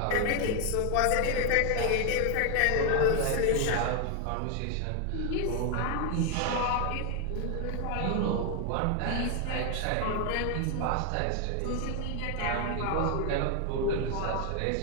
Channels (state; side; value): different; both; correlation 0.01